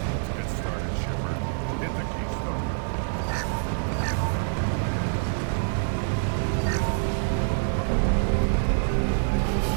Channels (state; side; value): silent; left; 61 dB below the other